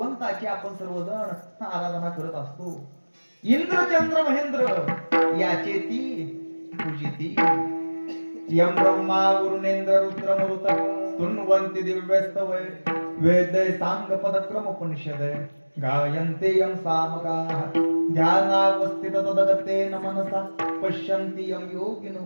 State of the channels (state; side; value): inverted; both; correlation -1.00